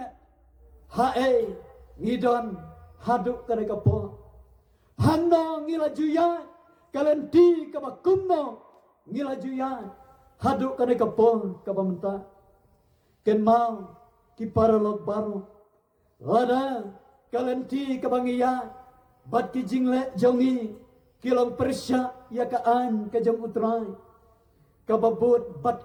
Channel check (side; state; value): both; identical; correlation 1.00